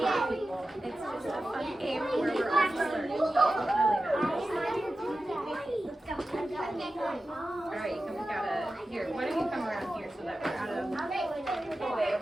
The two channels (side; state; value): both; normal; correlation 0.93